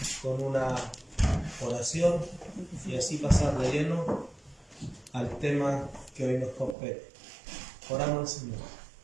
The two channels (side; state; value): left; drops out; at 6.8 s